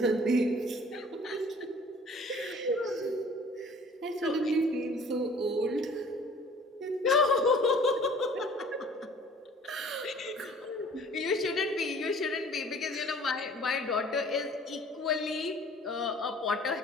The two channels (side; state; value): both; normal; correlation 0.51